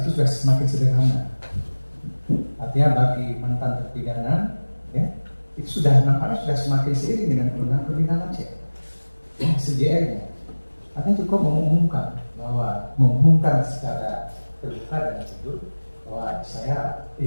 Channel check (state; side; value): inverted; both; correlation -1.00